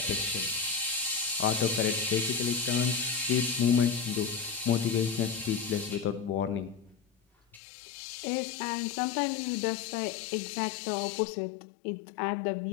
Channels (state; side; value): drops out; right; at 7.6 s